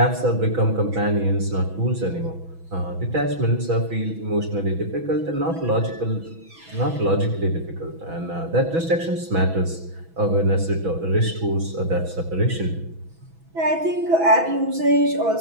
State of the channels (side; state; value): left; late; 6.1 ms